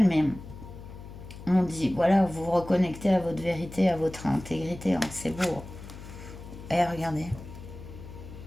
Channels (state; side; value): noise; left; hum, 14 dB below the sound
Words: mais on dit, voilà, vous vous reconnectez à votre vérité, à votre intégrité, hein, c'est beau. Et regardez,